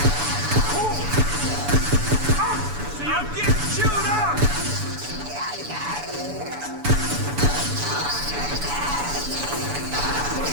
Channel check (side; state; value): left; late; 7.0 ms